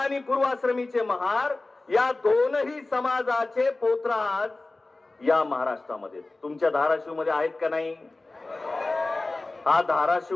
पूर्वाश्रमीचे महार या दोनही समाजाचे पोतराज या महाराष्ट्रामध्ये, तुमच्या धाराशिव मध्ये आहेत का नाही? हा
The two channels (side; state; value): right; quieter; 3.1 dB